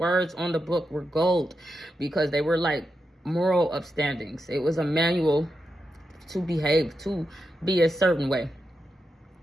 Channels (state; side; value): normal; both; correlation 0.87